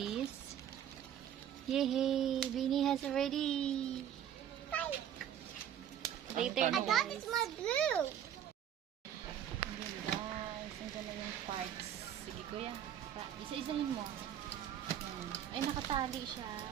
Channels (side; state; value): left; quieter; 10.0 dB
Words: Yay! Vinny has already. Bye. Later I na got guys. this my blue. Ayan guys, nandiyan na yung parts. Sige kuya, isa-isahin mo. Ayan. Ay, nakatali siya.